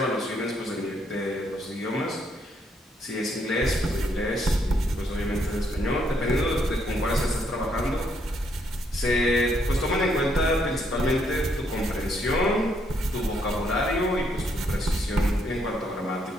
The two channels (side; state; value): both; normal; correlation 0.73